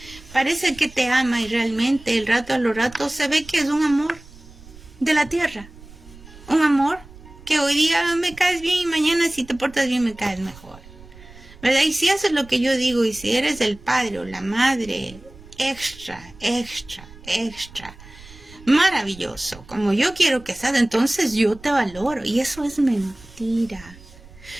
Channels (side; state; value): right; noise; rumble, 20 dB below the sound